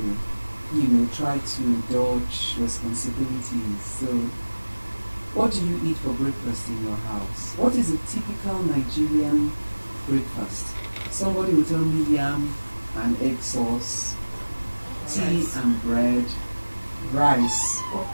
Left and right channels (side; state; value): both; inverted; correlation -1.00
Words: try to dodge responsibilities. So what do you eat for breakfast in your house? What is a typical Nigerian breakfast? Somebody will tell me yam and egg sauce, tea and bread, rice.